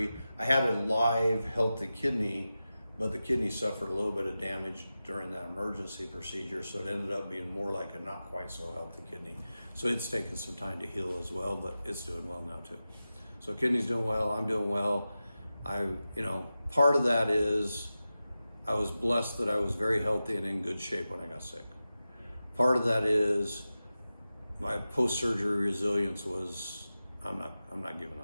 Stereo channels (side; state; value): both; inverted; correlation -0.94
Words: I had a live, healthy kidney, but the kidney suffered a little bit of damage during that emergency procedure, so it ended up being more like a not quite so healthy kidney. So it's taken some time to heal as well, but it's doing well now too. So kidney's doing well, I'm doing well. Part of that is I was blessed that I was very healthy and in good shape when I got sick. Part of that is my post-surgery resilience was, I'm not giving